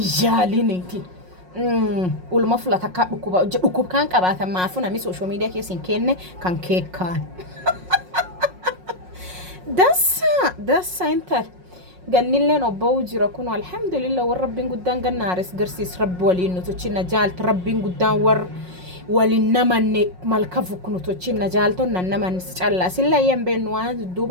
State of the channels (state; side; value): late; left; 5.5 ms